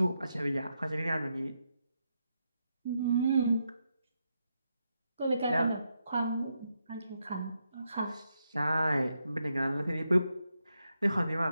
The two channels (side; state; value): both; inverted; correlation -0.83